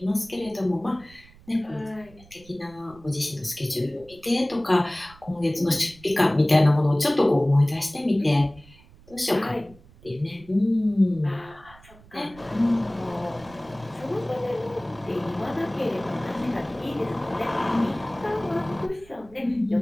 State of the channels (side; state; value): right; noise; rumble, 24 dB below the sound